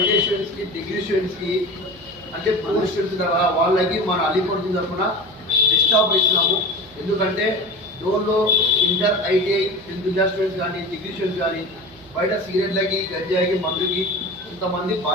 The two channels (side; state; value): right; noise; hum, 25 dB below the sound